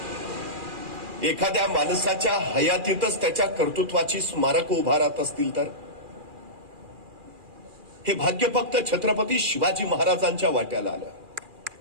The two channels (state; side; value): late; left; 2.4 ms